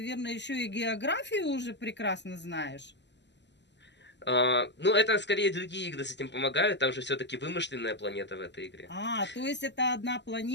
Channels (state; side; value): late; right; 0.51 ms